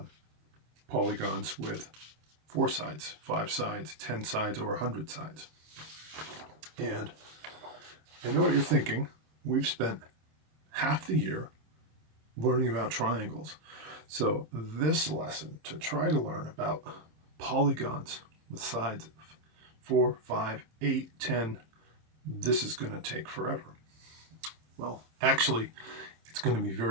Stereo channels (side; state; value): left; late; 26 ms